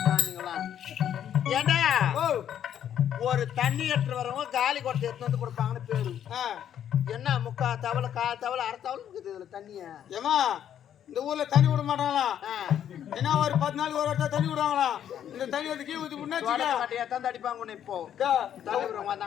தானிங்களா ஏண்டா ஓ ஒரு தண்ணி எடுத்து வரவங்க காலி கொட்டை எடுத்து வந்து கொடுப்பாங்கன்னு பேரு என்ன முக்கா தவளை கால் தவளை அரை தவளை இருக்குது இதுல தண்ணிய ஏமா இந்த ஊர்ல தண்ணி விட மாட்டாங்களா என்ன ஒரு 10 நாள் ஒரு இடத்துல தண்ணி விடுவாங்களா இந்த தண்ணி வந்து கீ ஊத்தி முன்னாடி அடிப்பாங்க இப்போ தலைவரம்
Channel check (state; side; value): quieter; right; 9.9 dB